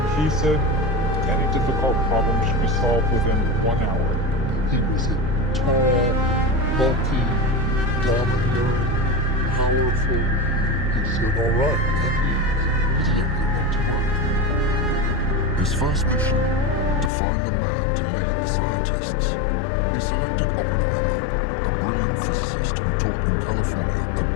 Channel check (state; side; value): drops out; right; at 17.1 s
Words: He said any difficult problem should be solved within 1 hour. He was a tall, bulky, domineering, powerful. He said, all right, and he exactly went to work. His first mission, to find the man to lead the scientists. He selected Oppenheimer, a brilliant physicist who taught in California at